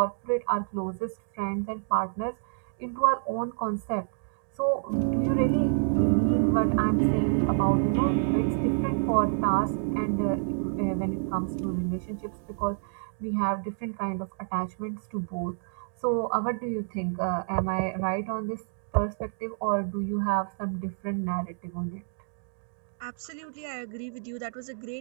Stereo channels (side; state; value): left; silent; digital silence